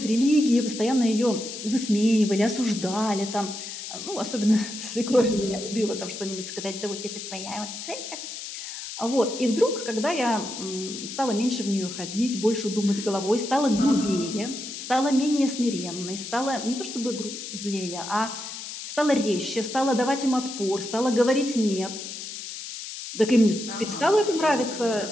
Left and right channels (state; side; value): noise; left; hiss, 9 dB below the sound